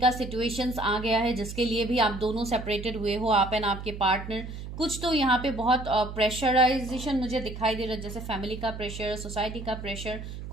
सिचुएशंस आ गया है जिसके लिए भी आप दोनों सेपरेटेड हुए हो, आप एंड आपके पार्टनर। कुछ तो यहाँ पे बहुत प्रेशराइजेशन मुझे दिखाई दे रहा है, जैसे फैमिली का प्रेशर, सोसाइटी का प्रेशर,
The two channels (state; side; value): noise; right; hum, 9 dB below the sound